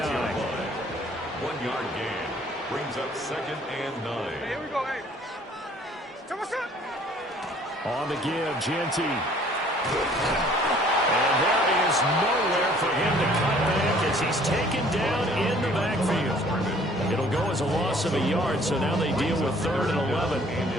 1 yard gain. brings up 2nd and 9. Hey, here we go, hey. Come on, son. On the give, Genty. And there is nowhere for him to cut back as he's taken down in the backfield. It'll go as a loss of a yard, so now they deal with 3rd and 11.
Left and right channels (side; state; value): both; normal; correlation 0.56